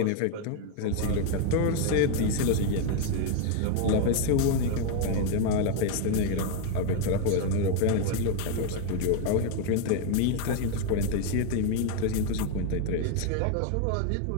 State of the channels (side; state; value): both; different; correlation 0.01